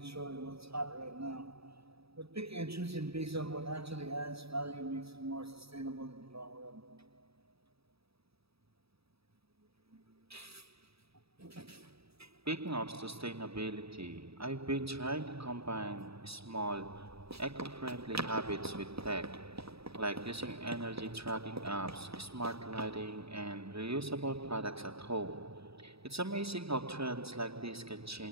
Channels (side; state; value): left; late; 0.77 ms